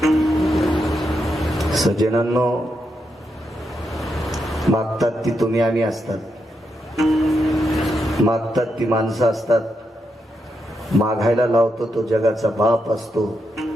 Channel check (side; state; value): both; normal; correlation 0.83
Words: सज्जनांनो, मागतात ती तुम्ही आम्ही असतात, मागतात ती माणसं असतात, मागायला लावतो तो जगाचा बाप असतो,